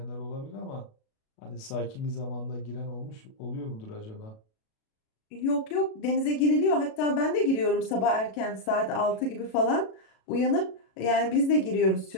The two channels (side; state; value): right; late; 37 ms